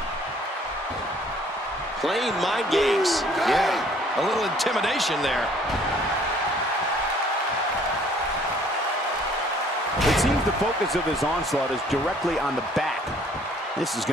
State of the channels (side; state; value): both; normal; correlation 0.58